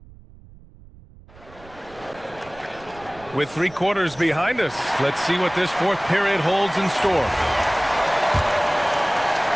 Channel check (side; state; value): right; noise; rumble, 22 dB below the sound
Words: With 3 quarters behind us, let's see what this fourth period holds in store.